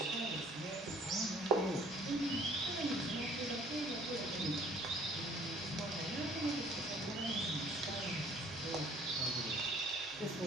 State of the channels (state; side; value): normal; both; correlation 0.56